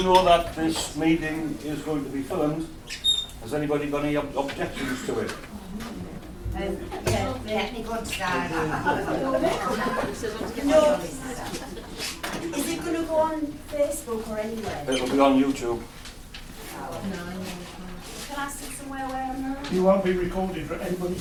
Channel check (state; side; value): identical; both; correlation 1.00